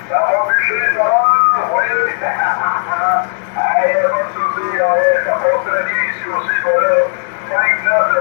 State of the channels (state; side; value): silent; right; digital silence